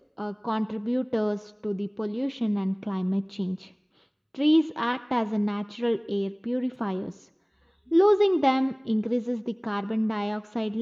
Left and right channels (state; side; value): identical; both; correlation 1.00